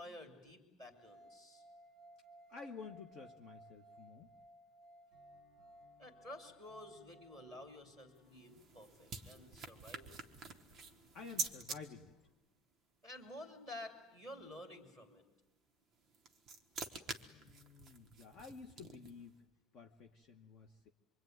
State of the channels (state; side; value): normal; both; correlation 0.47